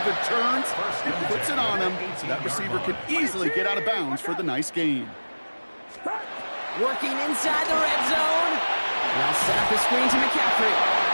turns, and puts it on him, so that receiver can easily get out of bounds for the nice gain. Working inside the red zone. And I'll set up the screen to McCaffrey.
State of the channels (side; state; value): both; inverted; correlation -1.00